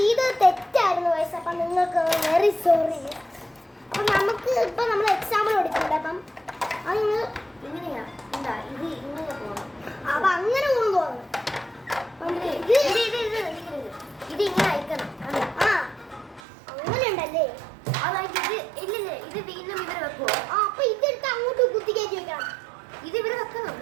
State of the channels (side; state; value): left; drops out; at 16.4 s